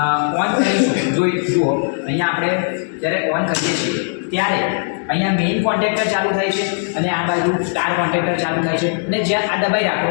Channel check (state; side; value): silent; right; 66 dB below the other